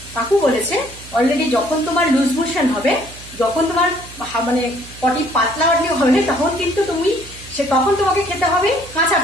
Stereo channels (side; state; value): right; noise; hum, 18 dB below the sound